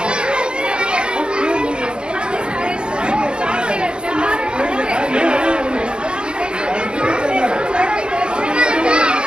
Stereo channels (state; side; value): late; left; 0.047 ms